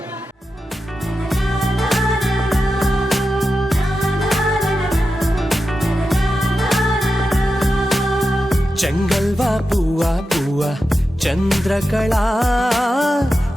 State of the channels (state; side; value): normal; both; correlation 0.90